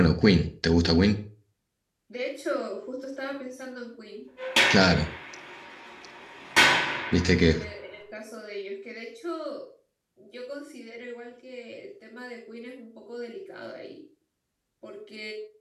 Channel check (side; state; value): both; identical; correlation 1.00